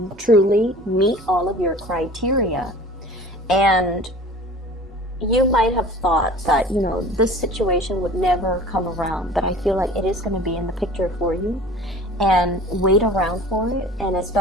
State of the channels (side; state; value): both; normal; correlation 0.43